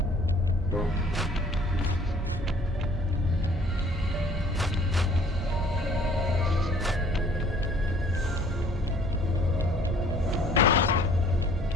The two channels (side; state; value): both; normal; correlation 0.55